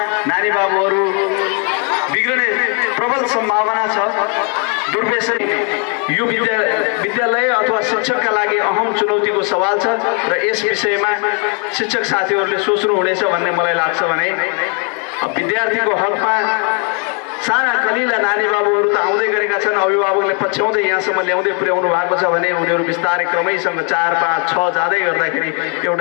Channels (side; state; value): right; quieter; 38.3 dB